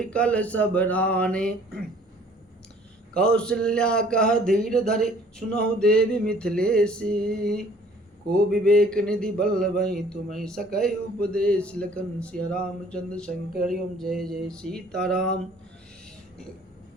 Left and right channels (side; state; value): both; normal; correlation 0.55